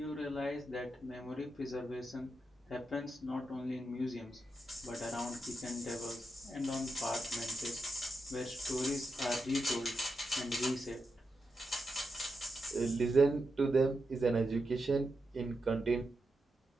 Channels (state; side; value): normal; both; correlation 0.87